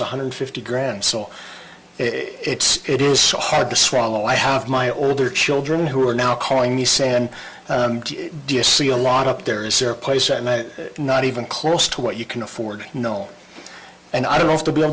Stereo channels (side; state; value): both; identical; correlation 1.00